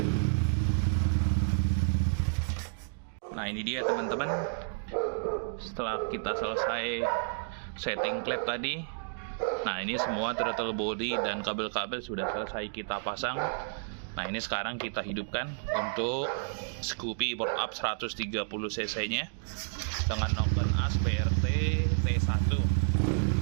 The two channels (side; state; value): left; silent; digital silence